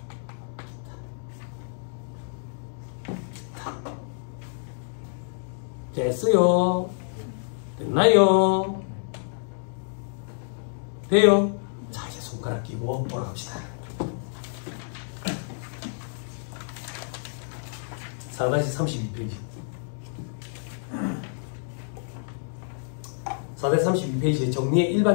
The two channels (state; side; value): silent; right; digital silence